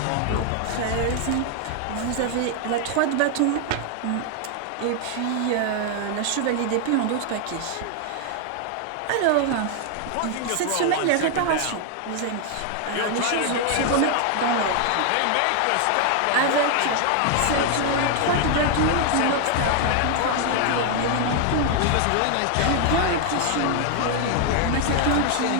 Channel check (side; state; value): both; different; correlation 0.00